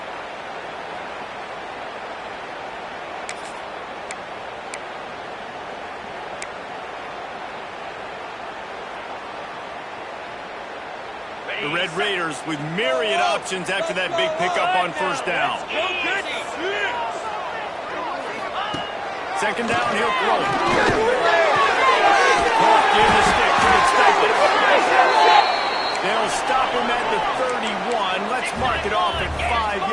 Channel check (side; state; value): both; identical; correlation 1.00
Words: The Red Raiders with myriad options after that big pickup on 1st down. 2nd down, he'll throw it. Give the stick to expect it. They'll stop him at the 31. Let's mark it off at 5